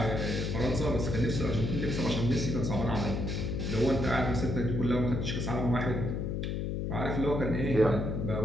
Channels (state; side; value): noise; left; hum, 1 dB below the sound